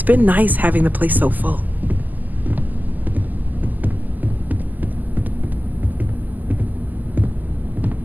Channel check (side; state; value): left; late; 0.083 ms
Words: been nice having the place so full.